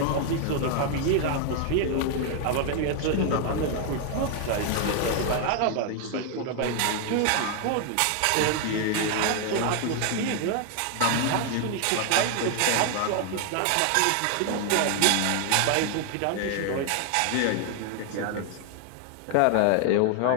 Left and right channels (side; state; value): both; different; correlation 0.00